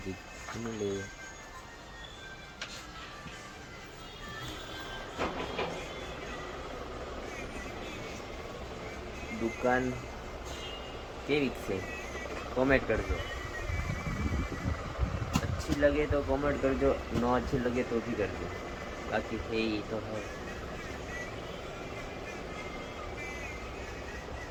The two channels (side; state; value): both; identical; correlation 1.00